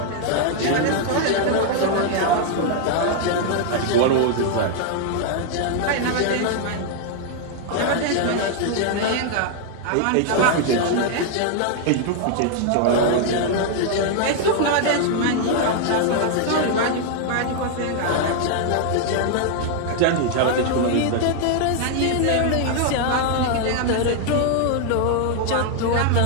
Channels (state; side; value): different; both; correlation 0.00